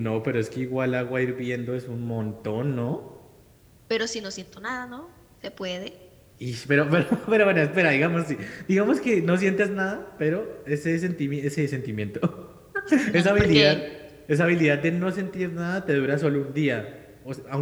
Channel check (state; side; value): identical; both; correlation 1.00